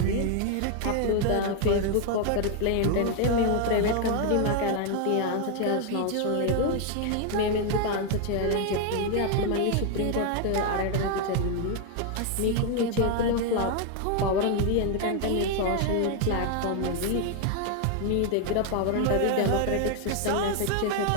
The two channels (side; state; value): both; different; correlation 0.00